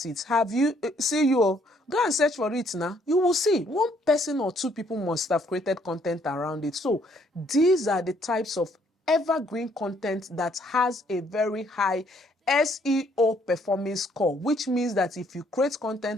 it. Have you? See you. Go and search for it now. You will see one person or two people must have created content around it. So these are the types of evergreen content that has a very high SEO performance score, which means that if you create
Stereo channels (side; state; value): both; normal; correlation 0.66